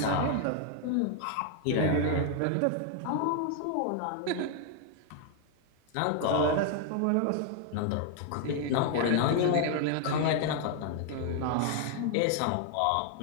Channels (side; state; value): both; different; correlation 0.00